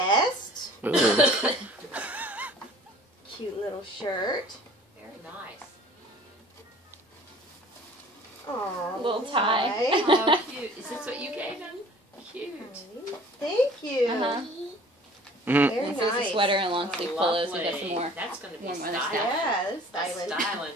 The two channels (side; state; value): both; normal; correlation 0.49